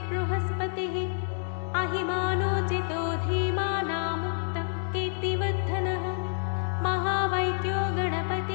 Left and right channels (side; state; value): right; silent; 59 dB below the other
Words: अहिमानोचितो धीमानामुक्तः कीर्तिवर्धनः महावैद्यो